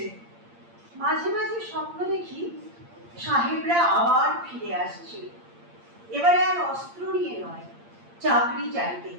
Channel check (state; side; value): late; left; 8.7 ms